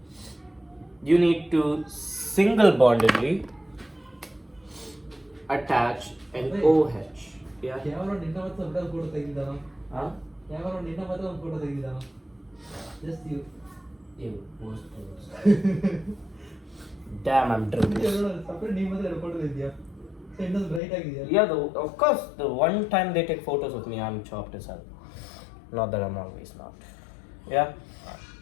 you need to single bondedly attach an OH. Yeah? Huh? Just you. Ew, damn, I'm drinking. Yeah, of course, the one time they take photos of me, I'm chopped as hell. Not that I'm always not. Yeah?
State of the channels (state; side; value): drops out; right; at 20.8 s